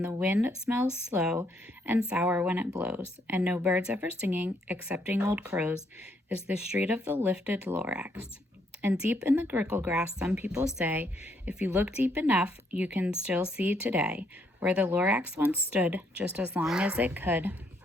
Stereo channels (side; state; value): both; normal; correlation 0.72